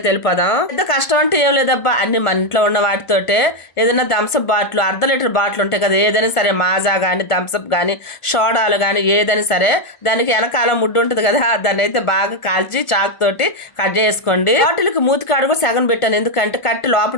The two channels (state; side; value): late; right; 1.5 ms